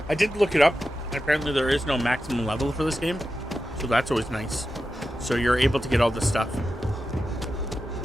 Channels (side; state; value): both; normal; correlation 0.91